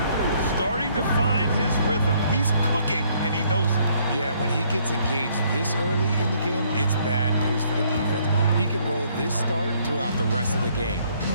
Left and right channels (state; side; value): inverted; both; correlation -0.66